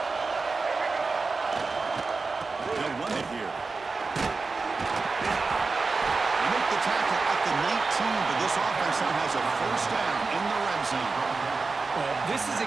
They'll run it here. They make the tackle at the 19, but this offense now has a first down in the red zone. Well, this is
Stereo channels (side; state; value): left; quieter; 4.1 dB